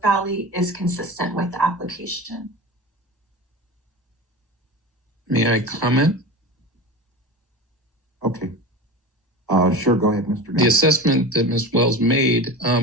Valley is consistent with the application. May I comment? Okay. Sure, go ahead, Mr. The Gunn. assessment that Ms. Wells made,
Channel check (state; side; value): normal; both; correlation 0.30